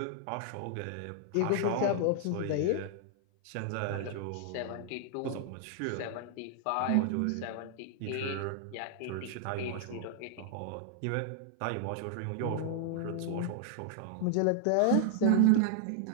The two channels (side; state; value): both; different; correlation 0.00